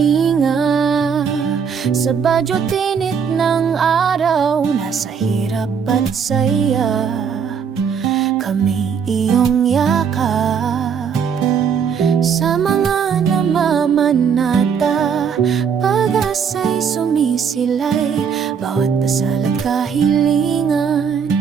sa badyo tinit ng araw. Nasa hirap at saya, kami iyong yakap. Sa mga namamanata, pag-asa'y sumisilay. Bawat dasal at kahilingan,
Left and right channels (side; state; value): left; quieter; 6.8 dB